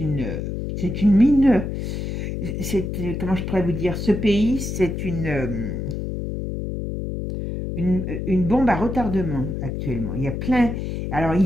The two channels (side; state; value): left; noise; hum, 4 dB below the sound